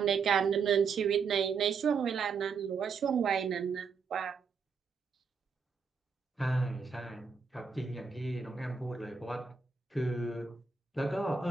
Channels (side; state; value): left; quieter; 5.5 dB